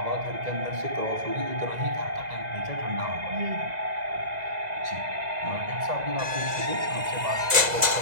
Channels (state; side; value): late; left; 2.0 ms